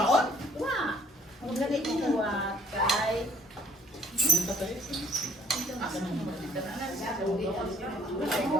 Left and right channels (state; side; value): normal; both; correlation 0.59